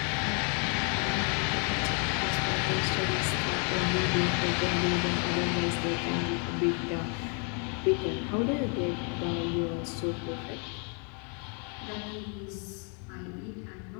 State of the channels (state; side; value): quieter; right; 38.3 dB